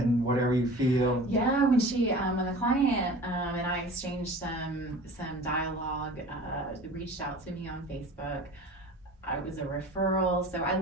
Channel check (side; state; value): both; normal; correlation 0.41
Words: and whatever you feel. Yeah, when the client and I exchanged some dialogue, reached out to me on Facebook. I was a referral, so I